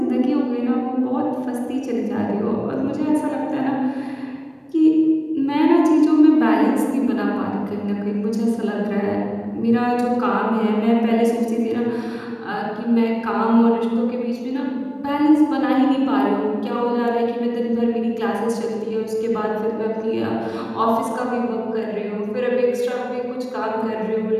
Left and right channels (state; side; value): identical; both; correlation 1.00